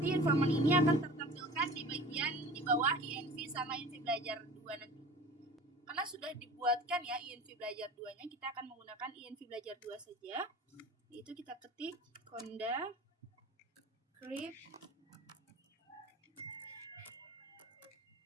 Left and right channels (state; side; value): normal; both; correlation 0.40